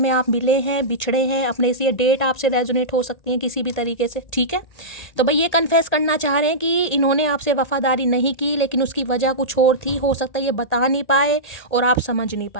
आप मिले हैं, बिछड़े हैं अपने, से ये डेट आपसे रेजोनेट हो सकती है किसी भी तरीके से, ठीक है। तो भाई ये कन्फेस करना चाह रहे हैं कि इन्होंने आपसे वफादारी नहीं की, लेकिन उसकी वजह कुछ और थी, हो सकता है ये बता नहीं पाए और आप समझ नहीं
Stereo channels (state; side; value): late; right; 1.8 ms